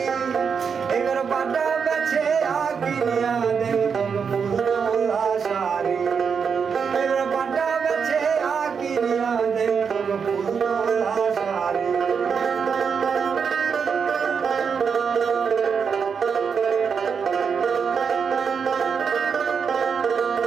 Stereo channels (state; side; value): quieter; left; 6.3 dB